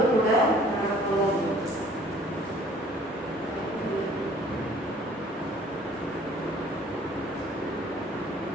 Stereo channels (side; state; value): both; normal; correlation 0.54